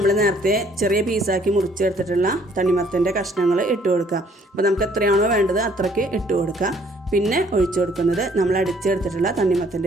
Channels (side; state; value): both; normal; correlation 0.62